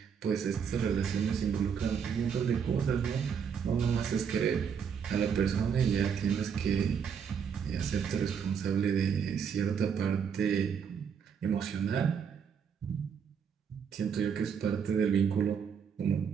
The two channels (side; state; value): left; quieter; 7.1 dB